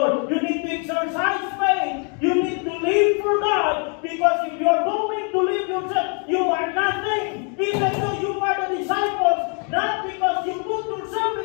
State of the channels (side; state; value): right; quieter; 39.4 dB